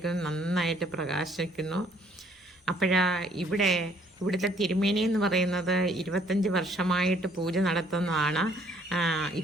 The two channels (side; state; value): both; normal; correlation 0.63